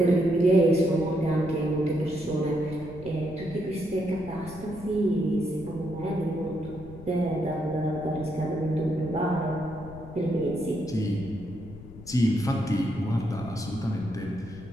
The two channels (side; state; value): left; noise; rumble, 16 dB below the sound